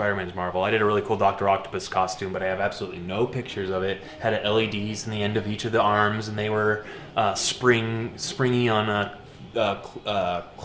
Marvel. I did a really cool Dr. Octopus costume, but I have absolutely no pictures of it. Had LEDs in the end of each of the arms, and they were springy on a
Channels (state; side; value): identical; both; correlation 1.00